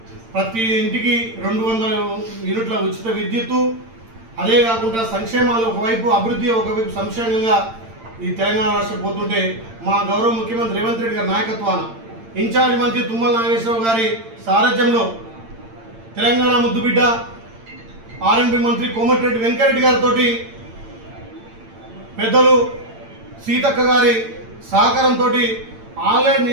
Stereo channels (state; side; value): late; left; 8.8 ms